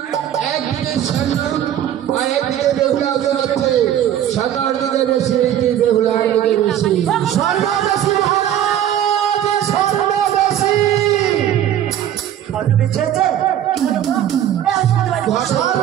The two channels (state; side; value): quieter; left; 10.9 dB